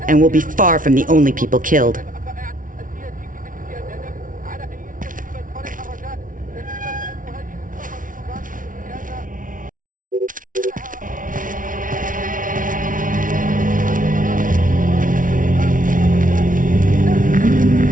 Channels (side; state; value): left; late; 0.38 ms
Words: and we'll be far from the only people killed.